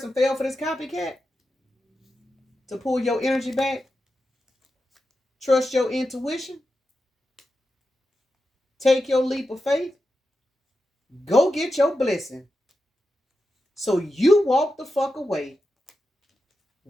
fell for this copycat to pull your energy back. Trust your intuition. Take your leap of faith. Go get your blessing. So you walked the fuck away.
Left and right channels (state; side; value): normal; both; correlation 0.90